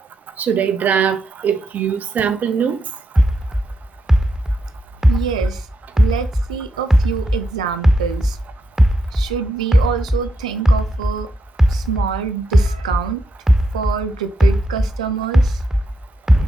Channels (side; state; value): both; normal; correlation 0.82